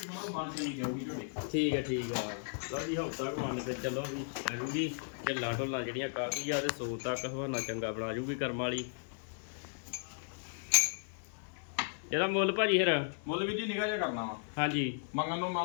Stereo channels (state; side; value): silent; right; 54 dB below the other